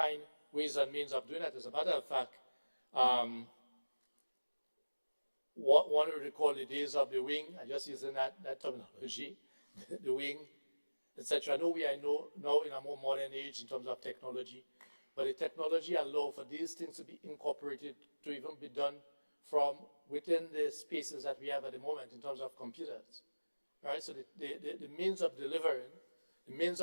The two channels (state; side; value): inverted; both; correlation -1.00